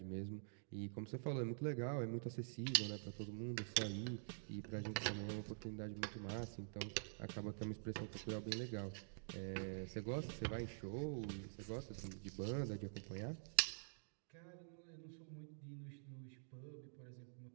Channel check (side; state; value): left; silent; digital silence